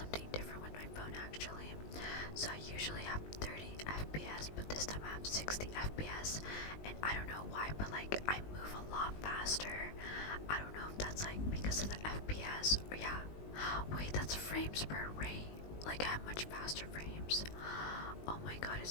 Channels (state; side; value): late; right; 19 ms